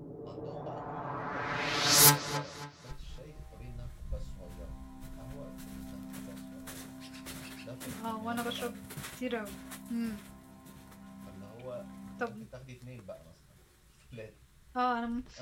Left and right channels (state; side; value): identical; both; correlation 1.00